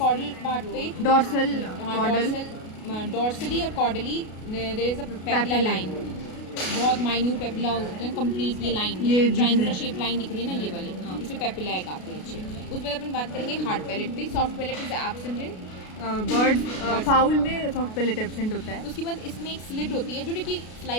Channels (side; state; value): right; late; 33 ms